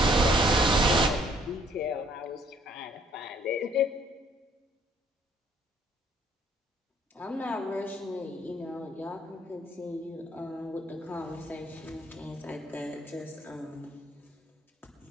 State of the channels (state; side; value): normal; both; correlation 0.63